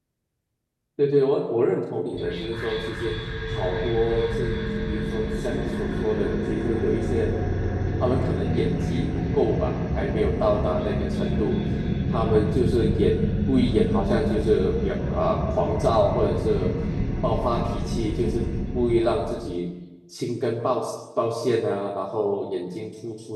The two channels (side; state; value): both; identical; correlation 1.00